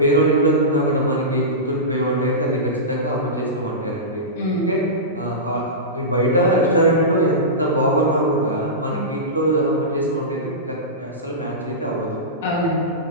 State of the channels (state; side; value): normal; both; correlation -0.18